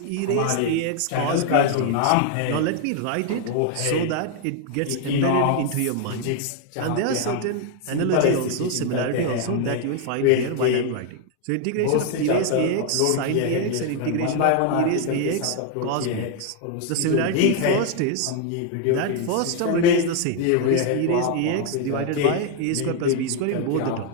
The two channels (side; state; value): both; different; correlation 0.00